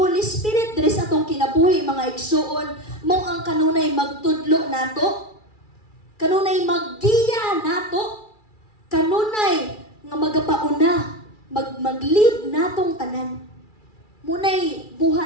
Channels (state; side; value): late; right; 2.3 ms